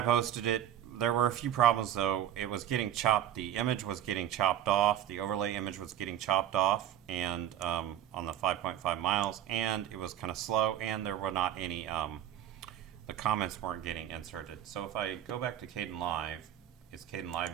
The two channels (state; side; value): quieter; left; 11.4 dB